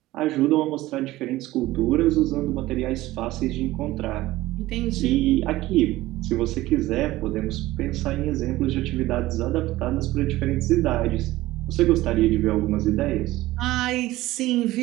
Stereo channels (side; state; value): left; quieter; 17.1 dB